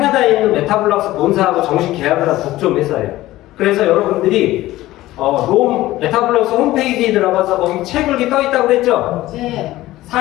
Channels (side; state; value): right; quieter; 16.5 dB